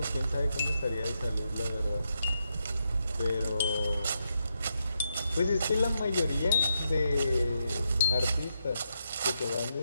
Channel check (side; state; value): both; inverted; correlation -0.82